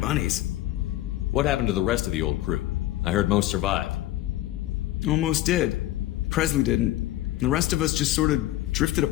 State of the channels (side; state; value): right; quieter; 15.3 dB